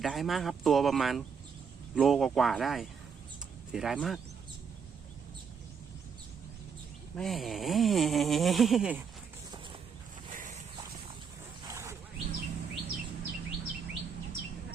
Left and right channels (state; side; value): quieter; left; 6.3 dB